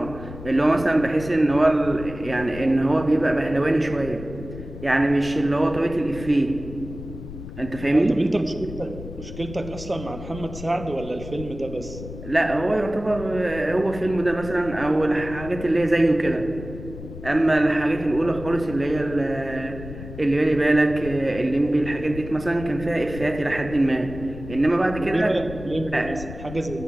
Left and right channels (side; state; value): left; noise; rumble, 12 dB below the sound